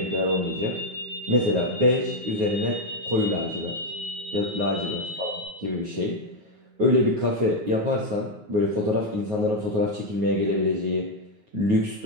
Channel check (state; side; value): late; left; 9.5 ms